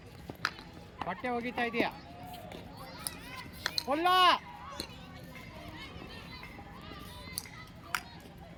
ಬಟ್ಟೆ ಒಗಿತಾ ಇದೆಯಾ, ಹೊಲ್ಲ.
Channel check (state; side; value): identical; both; correlation 1.00